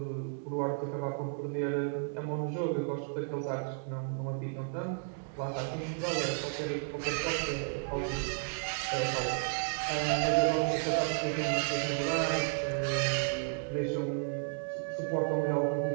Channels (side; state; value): left; silent; 56 dB below the other